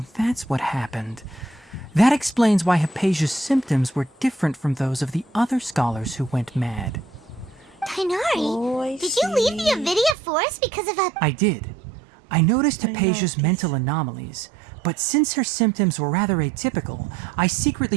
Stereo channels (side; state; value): left; drops out; at 10.2 s